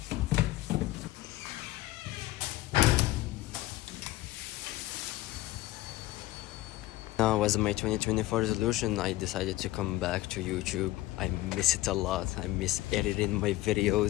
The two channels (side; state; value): right; quieter; 17.5 dB